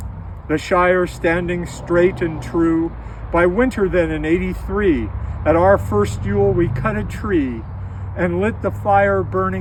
the shire standing straight and true. By winter then in 83, at our first Yule we cut a tree, and lit the fire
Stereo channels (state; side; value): identical; both; correlation 1.00